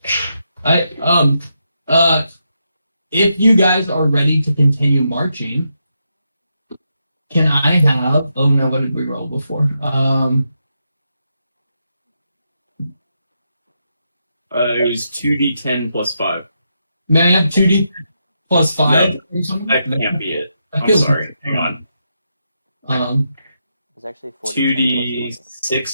If you guys are ready to continue marching, can I have? Oh no, what did we roll before? It was 2d10 plus 5. May I have 2d plus 5? No, or something? That can't be it. That I'm feels- sorry. Hang on. It was actually 40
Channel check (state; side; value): inverted; both; correlation -0.83